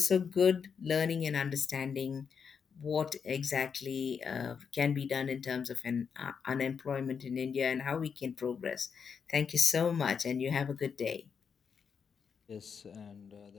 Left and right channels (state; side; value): quieter; right; 6.5 dB